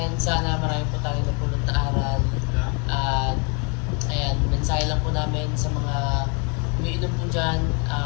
sana marami po tayo napulot na aral. At ayan, mensahe lang po namin sa mga umiinom po dyan,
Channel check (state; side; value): quieter; right; 34.9 dB